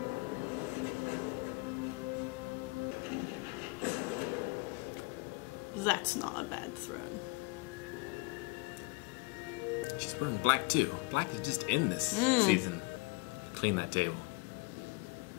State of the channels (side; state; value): right; quieter; 27.3 dB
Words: That's not a bad throne. She's wearing black too. Black is just in this season. Clean that table.